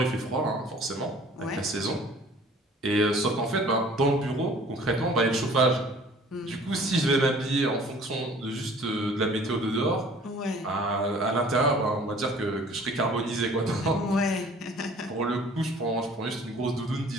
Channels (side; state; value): both; normal; correlation 0.50